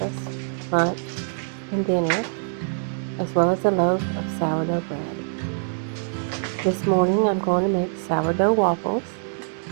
lunch, and dinner, as well as a loaf of sourdough bread. This morning I'm going to make sourdough waffles,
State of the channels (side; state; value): left; silent; digital silence